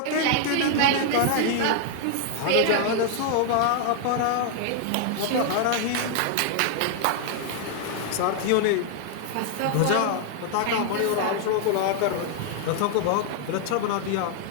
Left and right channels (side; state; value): both; different; correlation 0.00